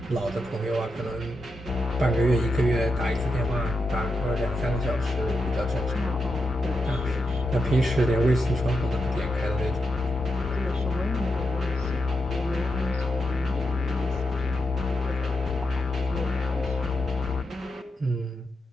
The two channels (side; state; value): both; normal; correlation 0.86